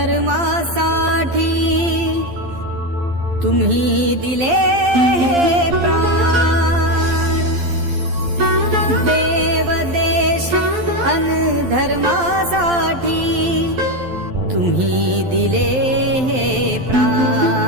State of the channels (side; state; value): left; late; 12 ms